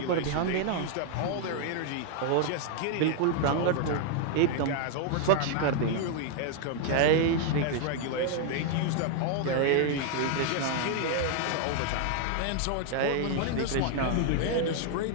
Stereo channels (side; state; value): both; different; correlation 0.00